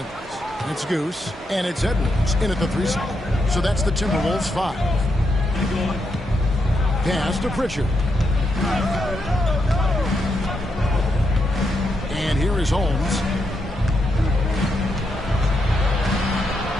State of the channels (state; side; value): normal; both; correlation 0.81